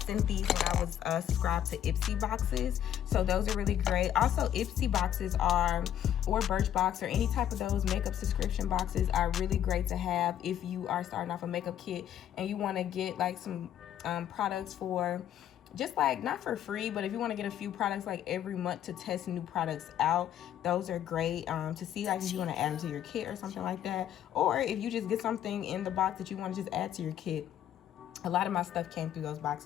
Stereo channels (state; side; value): quieter; right; 10.6 dB